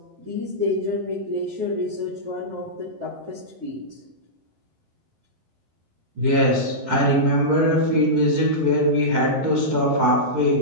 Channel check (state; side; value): late; left; 12 ms